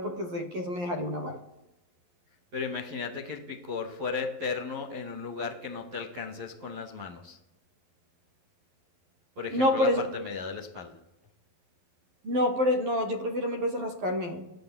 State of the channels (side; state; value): left; late; 11 ms